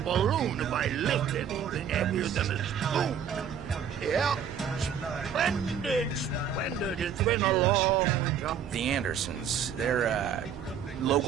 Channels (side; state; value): left; quieter; 7.9 dB